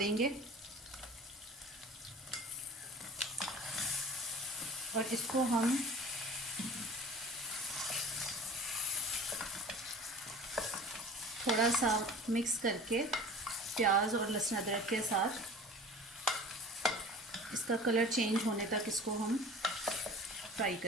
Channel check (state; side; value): normal; both; correlation 0.42